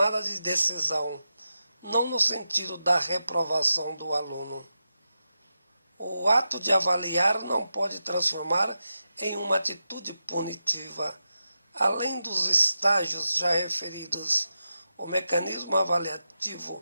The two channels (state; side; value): inverted; both; correlation -0.90